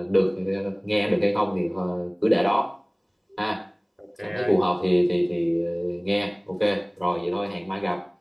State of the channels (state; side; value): identical; both; correlation 1.00